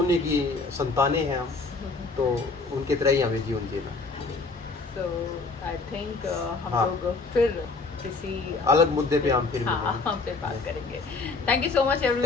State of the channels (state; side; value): quieter; right; 3.9 dB